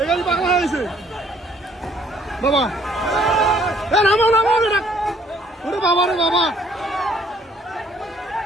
গাড়ি পাগলা হয়েছে বাবা। নামো নামো বেটা, ওরে বাবা রে বাবা,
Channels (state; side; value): normal; both; correlation 0.62